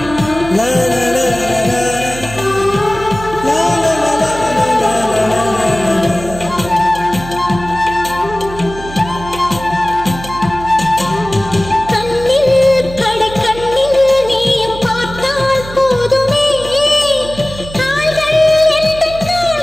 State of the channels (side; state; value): right; noise; hum, 13 dB below the sound